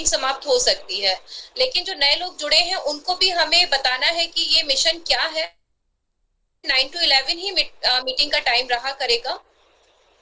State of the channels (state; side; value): identical; both; correlation 1.00